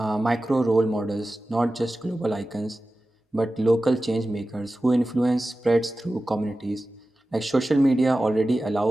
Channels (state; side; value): normal; both; correlation 0.95